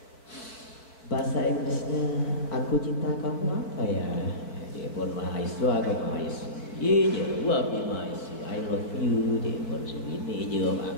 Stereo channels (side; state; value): right; late; 4.6 ms